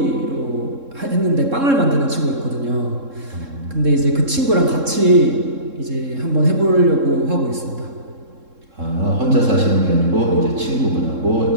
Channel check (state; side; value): late; left; 3.7 ms